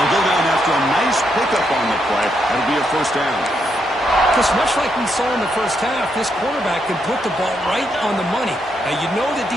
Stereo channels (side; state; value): both; normal; correlation 0.79